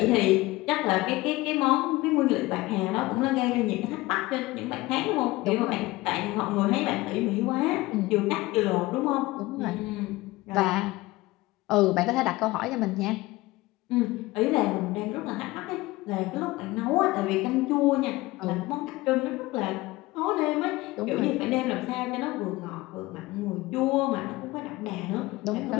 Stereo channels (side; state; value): right; quieter; 19.9 dB